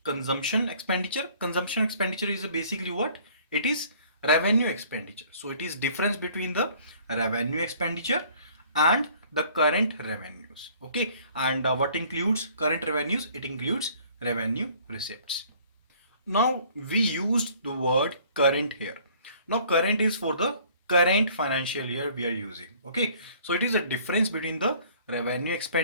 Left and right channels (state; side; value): inverted; both; correlation -0.56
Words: consumption expenditure. Consumption expenditure is basically what? It is revenue expenditure. So it is difference between the revenue expenditure and the current revenues. Okay, and what includes current revenues? It includes revenue receipts. Now we used the word current here. Now current is for the current financial year we are using. Okay, so it is a difference between the revenue